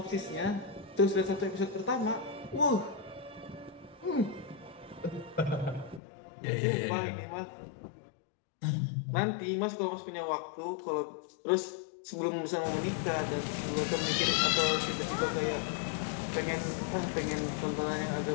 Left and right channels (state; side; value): drops out; right; at 6.0 s